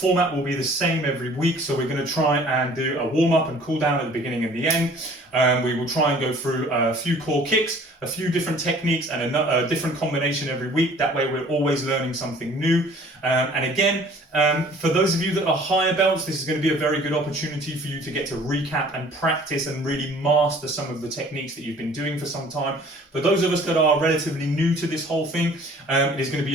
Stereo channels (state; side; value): normal; both; correlation 0.52